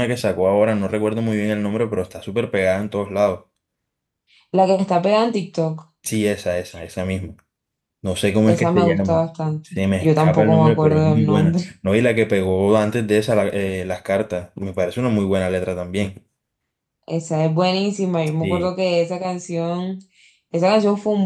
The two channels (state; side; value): identical; both; correlation 1.00